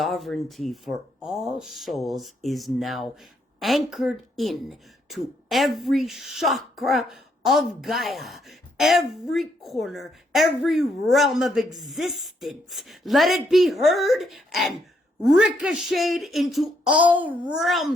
for all souls is now anchored in to every chakra of Gaia, every corner, every realm of existence. Let it be heard and ricocheted into all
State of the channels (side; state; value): both; normal; correlation 0.74